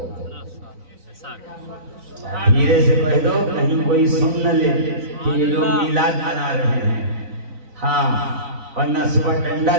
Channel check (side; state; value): left; late; 3.9 ms